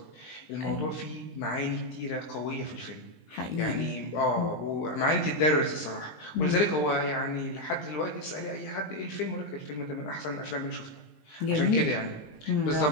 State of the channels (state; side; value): late; right; 20 ms